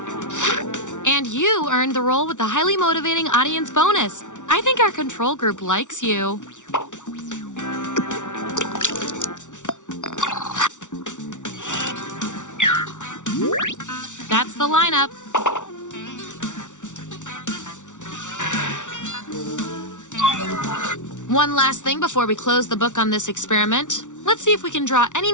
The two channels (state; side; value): late; right; 0.86 ms